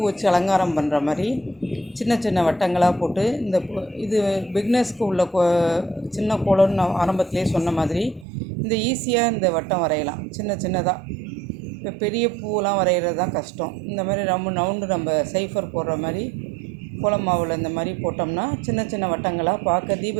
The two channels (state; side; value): drops out; left; at 8.2 s